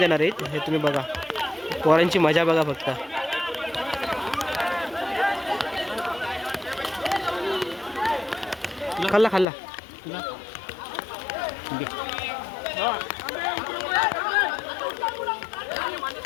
आहेत, हे तुम्ही बघा. पोरांची मजा बघा फक्त. खाल्ला खाल्ला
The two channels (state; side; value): drops out; right; at 9.5 s